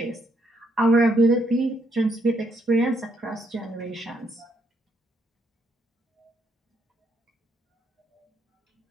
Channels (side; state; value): both; normal; correlation 0.74